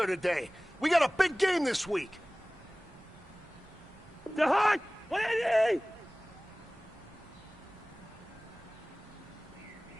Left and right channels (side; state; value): right; noise; rumble, 24 dB below the sound